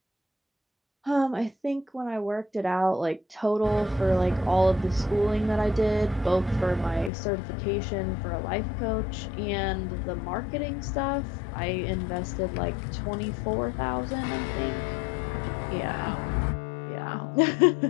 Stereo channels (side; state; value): right; drops out; at 7.1 s